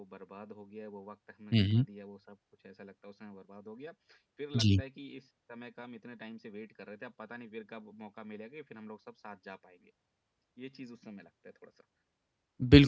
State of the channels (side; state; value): both; identical; correlation 1.00